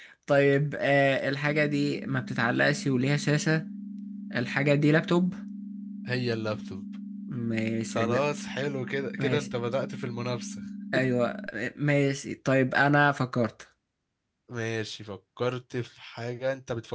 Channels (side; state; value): both; identical; correlation 1.00